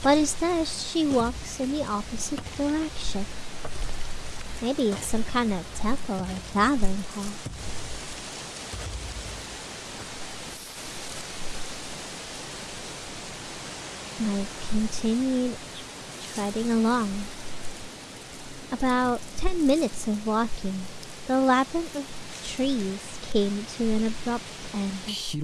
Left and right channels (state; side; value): identical; both; correlation 1.00